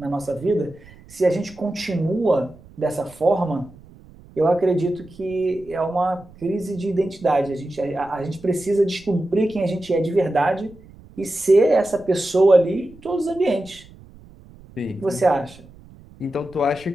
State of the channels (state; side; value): noise; right; rumble, 23 dB below the sound